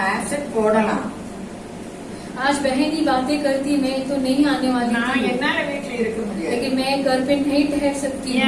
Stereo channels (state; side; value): identical; both; correlation 1.00